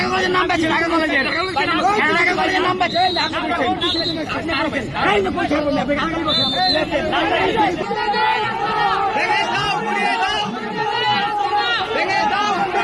কলেজের নাম পাচ্ছে, ঢাকা কলেজের নাম পাচ্ছে।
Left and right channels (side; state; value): both; identical; correlation 1.00